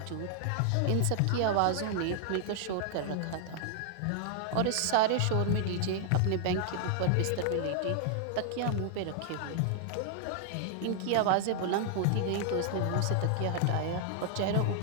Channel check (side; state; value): both; different; correlation 0.00